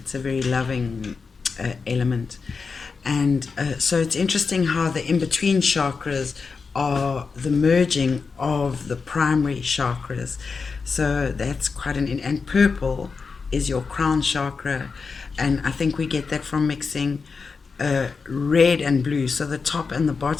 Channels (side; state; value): right; quieter; 4.9 dB